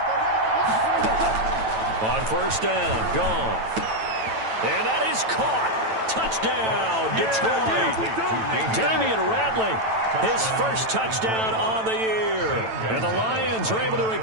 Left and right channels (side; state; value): left; late; 9.1 ms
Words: On first down, Goff. And that is caught. Touchdown, Detroit. Damian Ratley, his first touchdown on the year. And the Lions are able to